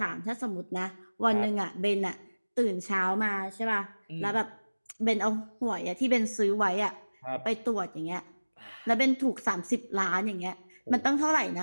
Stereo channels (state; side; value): inverted; both; correlation -1.00